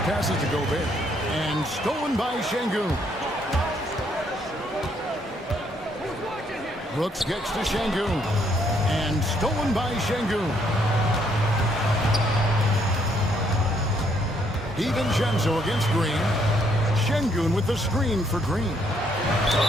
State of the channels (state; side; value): normal; both; correlation 0.70